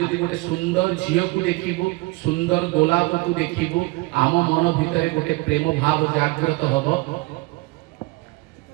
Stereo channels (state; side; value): quieter; left; 23.8 dB